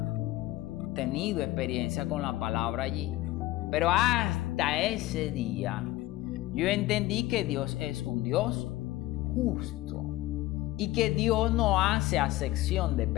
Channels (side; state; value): right; quieter; 17.1 dB